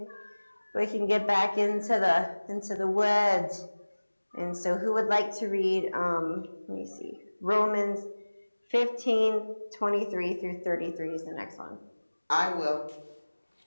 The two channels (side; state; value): both; inverted; correlation -1.00